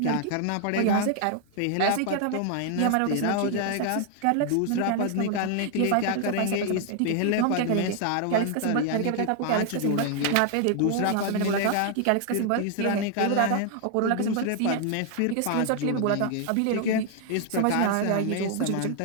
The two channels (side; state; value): both; different; correlation 0.00